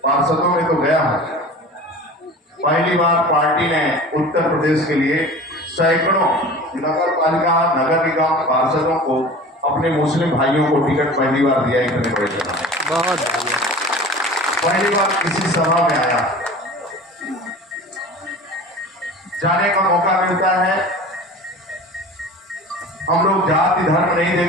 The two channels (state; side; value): normal; both; correlation 0.38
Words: पार्षदों में तो गया हूं, पहली बार पार्टी ने उत्तर प्रदेश के लिए सैकड़ों नगर पालिका नगर निगम पार्षदों को अपने मुस्लिम भाइयों को टिकट पहली बार दिया। इतने बड़े बहुत पहली बार किसी सभा में आया, जाने का मौका मिलता है। हम लोग जाति धर्म नहीं